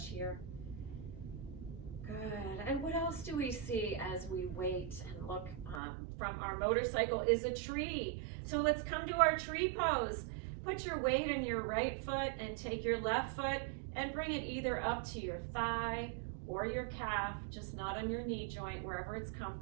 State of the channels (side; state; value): left; drops out; at 5.8 s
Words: here. Good. And what else do we see as we wait and look from our motorcycle is a tree. So let's come to our tree pose. Put your weight in your right foot and take your left foot and bring it either up to your thigh or your calf, just not on your knee joint, wherever it's